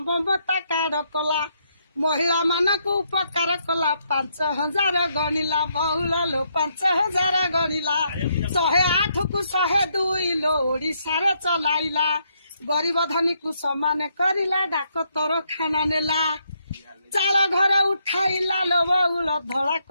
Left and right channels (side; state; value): both; inverted; correlation -0.75